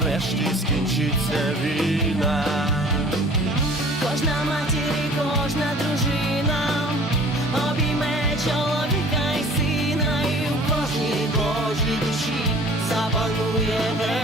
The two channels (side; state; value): both; normal; correlation 0.48